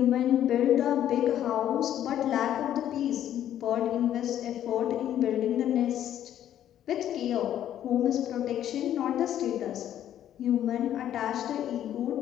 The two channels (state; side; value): quieter; right; 11.1 dB